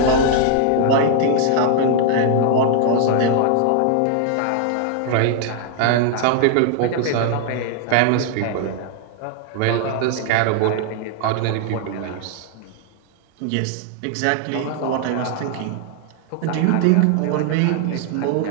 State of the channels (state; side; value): different; both; correlation 0.00